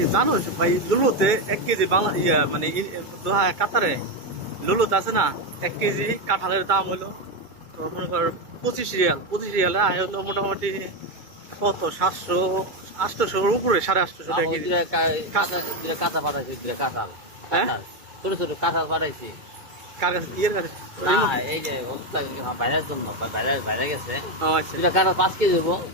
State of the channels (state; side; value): late; left; 2.2 ms